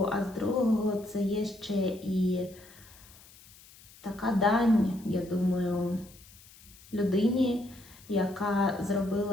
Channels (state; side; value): noise; left; hiss, 23 dB below the sound